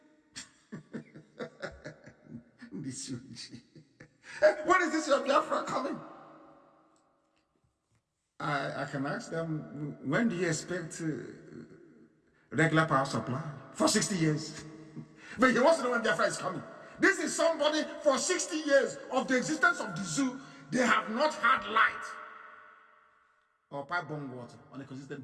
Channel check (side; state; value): both; identical; correlation 1.00